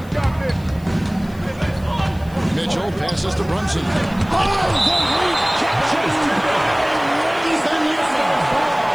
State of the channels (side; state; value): left; noise; hiss, 25 dB below the sound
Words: Mitchell passes to Brunson.